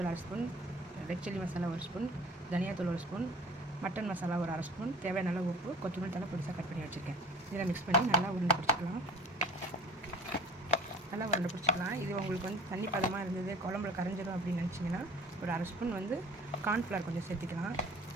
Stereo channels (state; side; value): normal; both; correlation 0.45